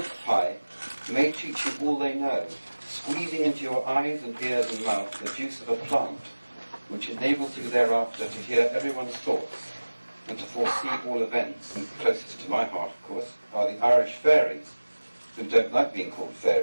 may teach you all they know, squeezing into your eyes and ears and mouth the juice of a plant, which enables you thereafter to hear everyone's thoughts and to foresee all events. And closest to my heart, of course, are the Irish fairies, who don't like being called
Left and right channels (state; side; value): inverted; both; correlation -1.00